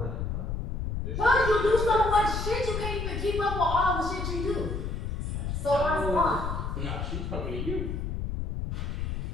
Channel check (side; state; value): left; noise; rumble, 3 dB below the sound